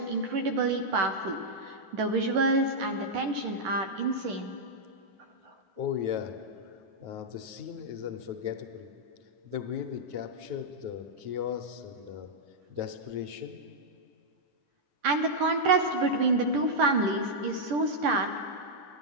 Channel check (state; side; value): late; left; 10 ms